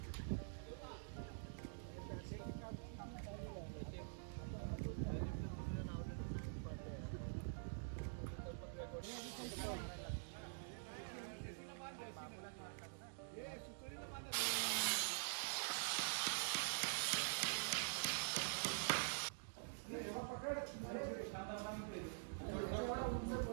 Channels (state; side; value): silent; left; digital silence